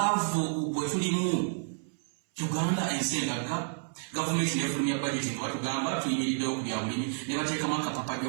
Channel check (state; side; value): silent; left; 58 dB below the other